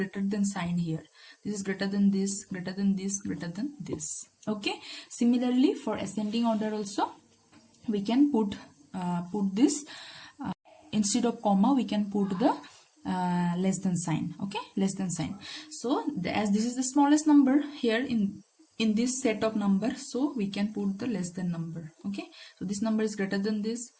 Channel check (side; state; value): both; identical; correlation 1.00